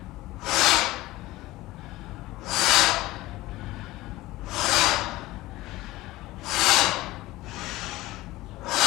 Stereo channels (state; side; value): quieter; right; 18.3 dB